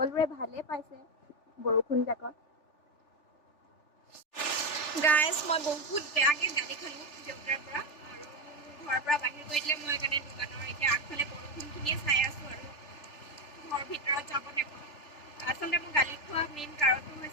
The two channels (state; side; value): late; right; 3.4 ms